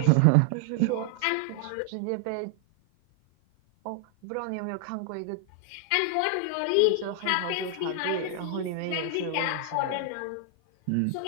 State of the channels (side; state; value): both; different; correlation 0.00